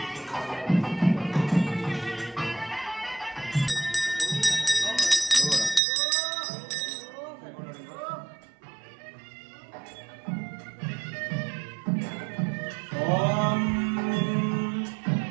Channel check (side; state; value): left; drops out; at 5.8 s